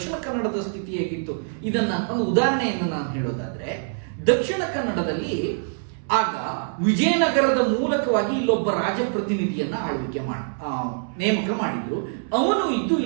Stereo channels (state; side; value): silent; left; 62 dB below the other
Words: ಕನ್ನಡದ ಸ್ಥಿತಿ ಹೇಗಿತ್ತು, ಇದನ್ನ ಒಂದು ಉದಾಹರಣೆಯನ್ನು ನಾನು ಹೇಳೋದಾದ್ರೆ, ದಕ್ಷಿಣ ಕನ್ನಡದಲ್ಲಿ ಆಗ ವಿಜಯನಗರದ ಮೂಲಕವಾಗಿ ಇಲ್ಲೊಬ್ಬ ರಾಜಪ್ರತಿನಿಧಿಯನ್ನ ನೇಮಕ ಮಾಡಿದ್ರು. ಅವನು ಇದ್ದು